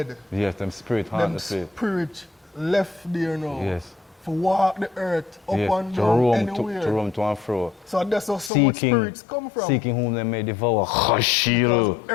Yes, them spirit haunt the spirit. Spirit left there now. Yes. For walk the earth up and to down roam anywhere. to roam to and fro. So that's how some much spirits come from. Seeking whom they may devour. Because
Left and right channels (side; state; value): right; drops out; at 8.5 s